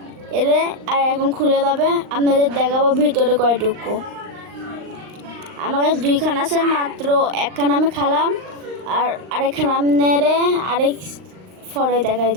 এরে, আর এখন খুলে যাবে। আপনাদের দেখাবো ভিতরে কয়টুকু। আমার কাছে দুইখান আছে, মাত্র একখান আমি খালাম, আর আরেকখান আপনারে আরেক ফরে দেখাই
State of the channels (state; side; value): late; left; 39 ms